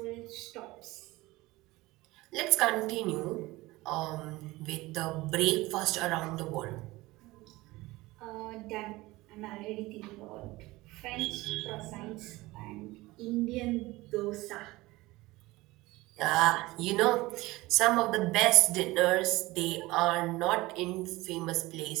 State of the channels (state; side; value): quieter; left; 20.0 dB